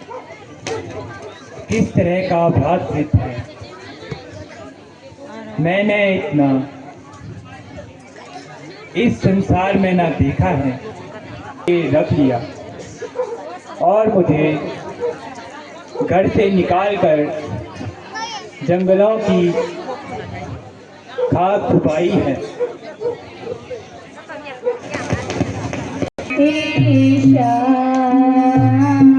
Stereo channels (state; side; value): identical; both; correlation 1.00